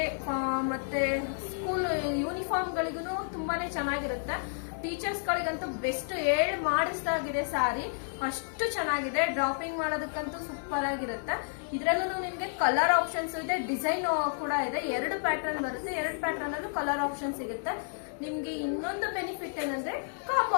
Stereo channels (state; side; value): silent; right; digital silence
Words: ಮತ್ತೆ ಸ್ಕೂಲ್ ಯೂನಿಫಾರ್ಮ್ ಗಳಿಗೂ ತುಂಬಾನೇ ಚೆನ್ನಾಗಿರುತ್ತೆ. ಟೀಚರ್ಸ್ ಗಳಿಗಂತೂ ಬೆಸ್ಟ್ ಮಾಡಿಸ್ದಾಗಿದೆ ಸ್ಯಾರಿ, ಅಷ್ಟು ಚೆನ್ನಾಗಿದೆ. ಡ್ರಾಪಿಂಗ್ ಮಾಡೋದಕ್ಕಂತೂ ಸೂಪರ್ ಆಗಿರುತ್ತೆ. ಇದ್ರಲ್ಲೂ ನಿಮ್ಗೆ ಕಲರ್ ಆಪ್ಷನ್ಸ್ ಇದೆ, ಡಿಸೈನ್ ಕೂಡ ಇದೆ. 2 ಪ್ಯಾಟರ್ನ್ ಬರುತ್ತೆ, 2 ಪ್ಯಾಟರ್ನ್ ಅಲ್ಲೂ ಕಲರ್ ಆಪ್ಷನ್ ಸಿಗುತ್ತೆ. ನಿಮ್ಗೆ ಇನ್ನೊಂದು ಬೆನಿಫಿಟ್ ಏನಂದ್ರೆ